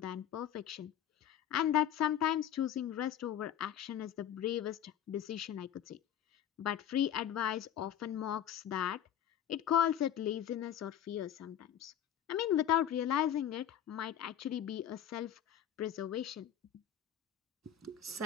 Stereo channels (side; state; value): right; quieter; 10.2 dB